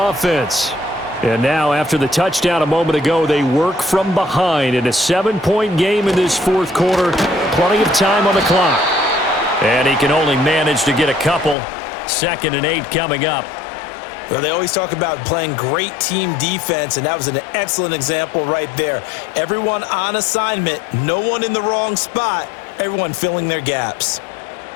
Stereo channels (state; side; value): drops out; right; at 11.6 s